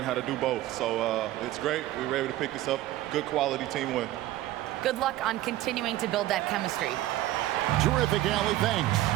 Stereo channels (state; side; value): quieter; left; 15.2 dB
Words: how to do both. So it's great. We were able to pick this up. Good quality team win. Good luck on continuing to build that chemistry. Terrific, Allie. Thanks.